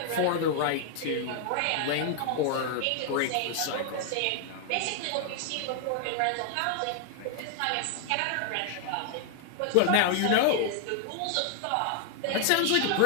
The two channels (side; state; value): both; different; correlation 0.00